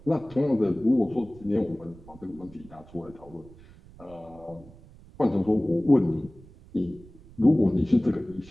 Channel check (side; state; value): right; noise; rumble, 22 dB below the sound